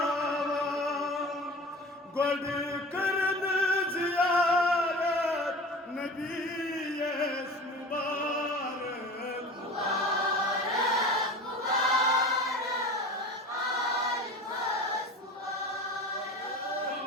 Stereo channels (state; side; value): normal; both; correlation 0.37